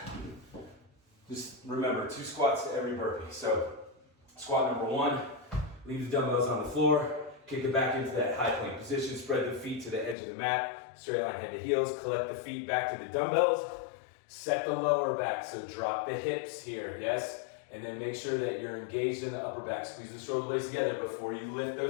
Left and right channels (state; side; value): drops out; right; at 10.2 s